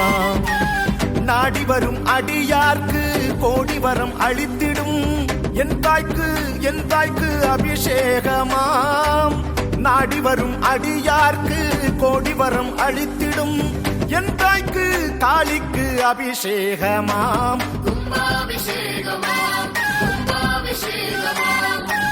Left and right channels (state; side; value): identical; both; correlation 1.00